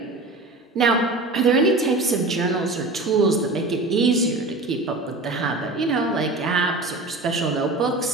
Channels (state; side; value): quieter; left; 3.0 dB